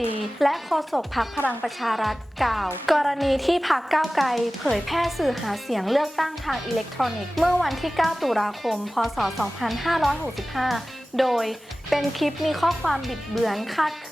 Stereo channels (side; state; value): both; normal; correlation 0.97